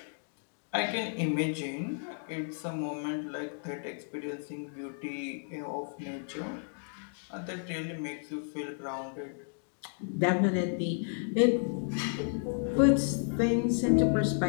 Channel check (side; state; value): right; silent; digital silence